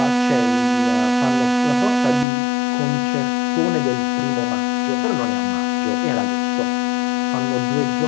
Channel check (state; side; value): drops out; right; at 2.2 s